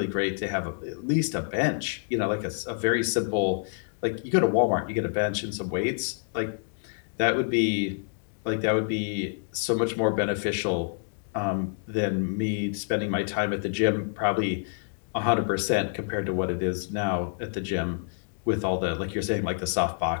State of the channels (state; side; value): silent; right; digital silence